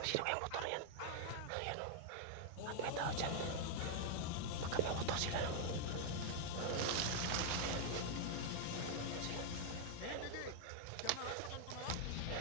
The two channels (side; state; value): both; different; correlation 0.00